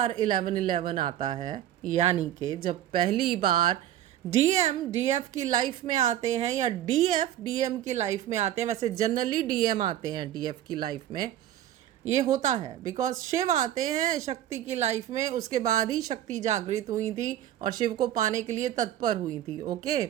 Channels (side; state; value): left; quieter; 12.1 dB